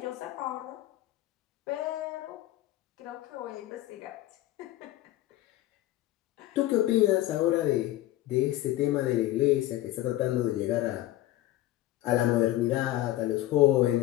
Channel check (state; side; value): quieter; right; 15.2 dB